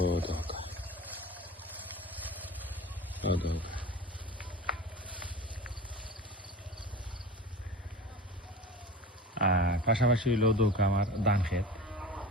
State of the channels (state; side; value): normal; both; correlation 0.34